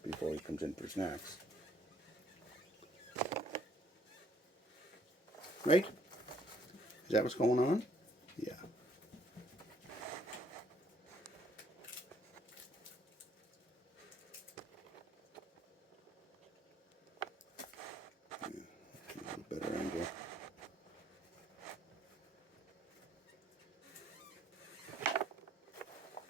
before he comes in for snacks. Right? Is that what's going on? Yeah. A better angle.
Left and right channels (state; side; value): normal; both; correlation 0.64